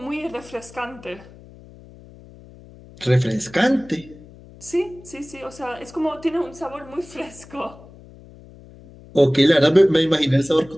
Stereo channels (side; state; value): left; noise; hum, 21 dB below the sound